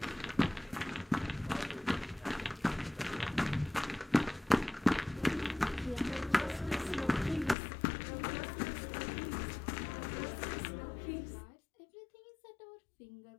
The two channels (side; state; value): right; drops out; at 7.6 s